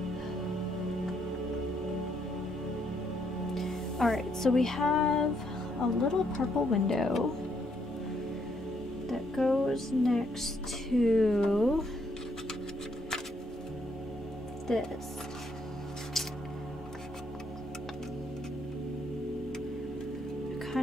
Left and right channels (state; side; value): normal; both; correlation 0.73